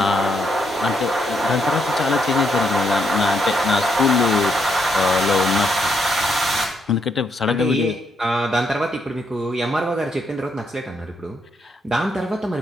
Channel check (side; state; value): both; normal; correlation 0.76